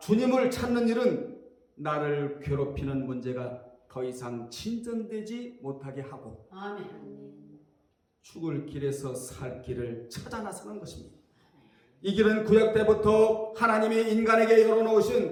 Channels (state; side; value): identical; both; correlation 1.00